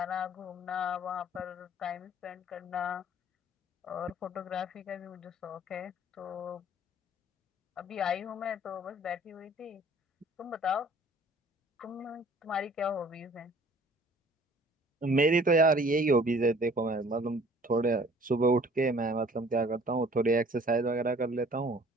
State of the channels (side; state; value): both; normal; correlation 0.53